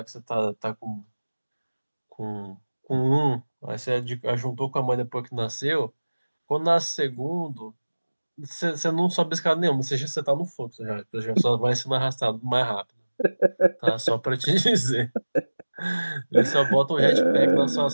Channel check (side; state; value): both; inverted; correlation -1.00